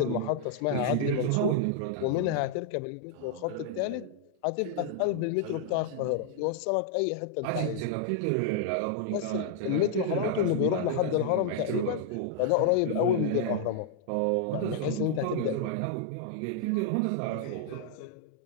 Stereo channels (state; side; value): different; both; correlation -0.01